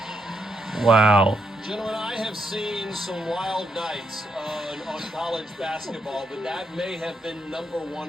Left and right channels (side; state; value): both; normal; correlation 0.79